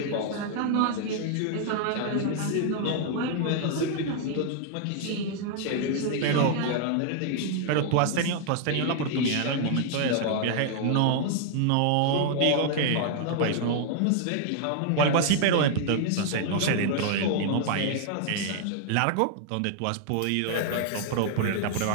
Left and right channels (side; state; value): both; different; correlation 0.00